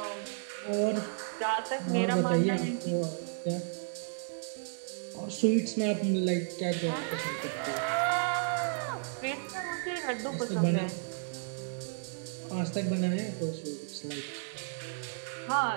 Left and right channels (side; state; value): left; silent; digital silence